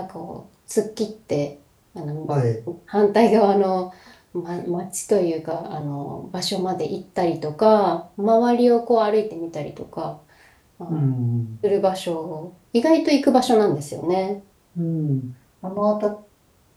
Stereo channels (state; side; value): identical; both; correlation 1.00